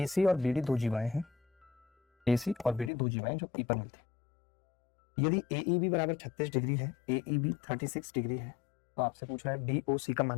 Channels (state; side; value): drops out; right; at 2.9 s